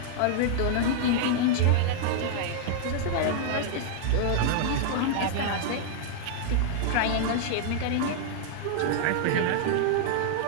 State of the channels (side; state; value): both; different; correlation -0.01